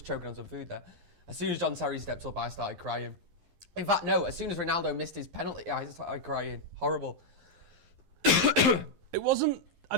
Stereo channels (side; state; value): left; late; 11 ms